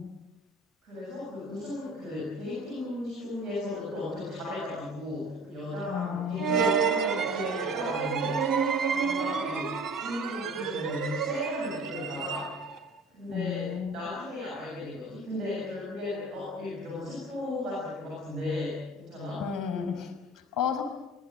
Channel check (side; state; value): both; normal; correlation 0.43